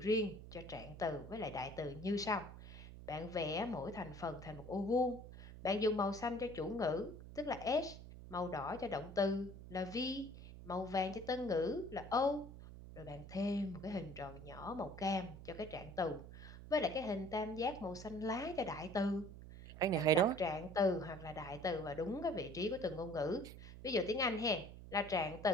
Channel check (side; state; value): right; noise; hum, 13 dB below the sound